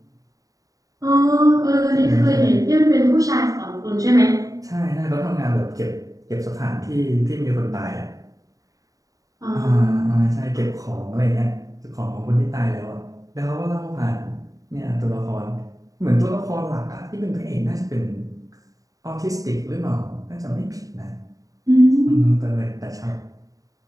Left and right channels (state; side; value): late; left; 0.17 ms